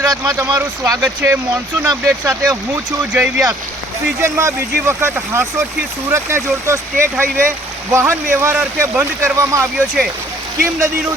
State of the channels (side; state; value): both; normal; correlation 0.58